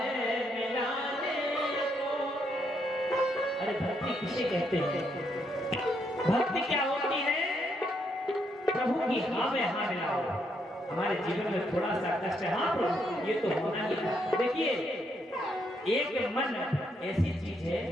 मिलाने को। अरे भक्ति किसे कहते हैं? भक्ति क्या होती है? प्रभु की हाँ में हाँ मिलाओ। हमारे जीवन में थोड़ा सा कष्ट है, हाँ प्रभु ये तो होना ही है। देखिए एक मन ऐसी चीज है,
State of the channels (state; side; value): normal; both; correlation 0.76